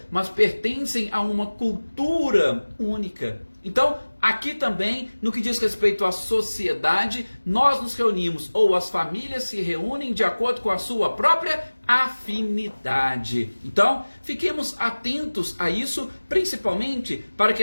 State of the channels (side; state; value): both; inverted; correlation -1.00